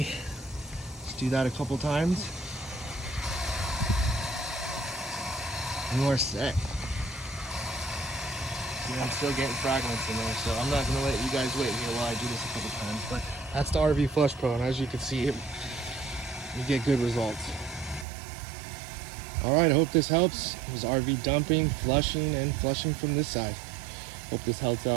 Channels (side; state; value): left; drops out; at 18.1 s